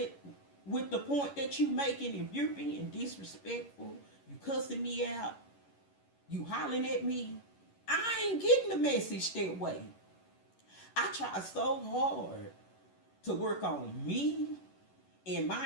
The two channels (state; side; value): late; right; 11 ms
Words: with the point that you making, if you're being disrespectful, you cussing me out, you hollering at me, I ain't getting the message that way. I try so hard to work on me and